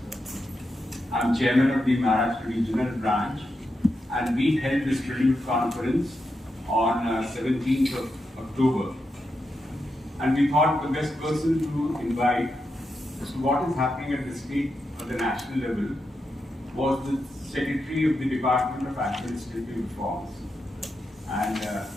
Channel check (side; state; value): both; normal; correlation 0.86